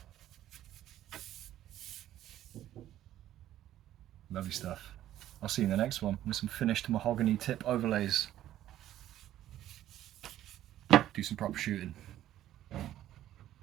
Lovely stuff. I'll see you in the next one with some finished mahogany tip overlays. Do some proper shooting.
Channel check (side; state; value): left; quieter; 12.7 dB